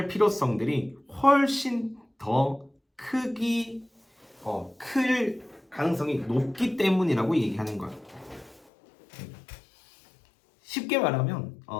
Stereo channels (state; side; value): drops out; right; at 8.6 s